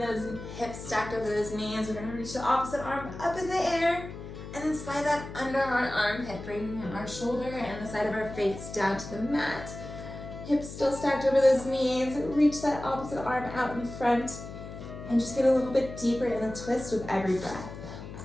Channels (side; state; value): left; noise; hum, 11 dB below the sound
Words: hips stacked over those knees, we're gonna reach the opposite arm up in the air and then slide that under our armpit, bringing our shoulder and the side of our face down to the mat. Hips still stacked over those knees. Reach that opposite arm out in front and just get a little bit deeper in the twist with every breath.